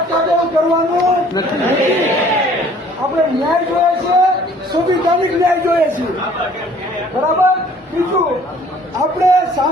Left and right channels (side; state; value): both; normal; correlation 0.55